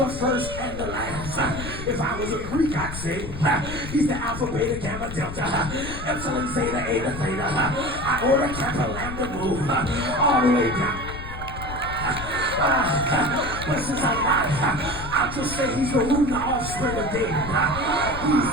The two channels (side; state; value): left; noise; rumble, 9 dB below the sound